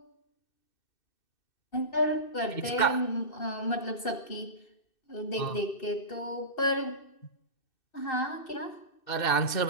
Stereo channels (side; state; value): right; late; 2.6 ms